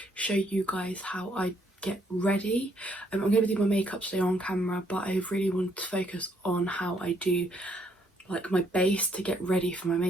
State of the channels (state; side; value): normal; both; correlation 0.69